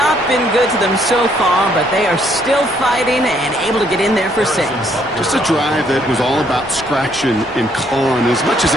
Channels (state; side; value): normal; both; correlation 0.68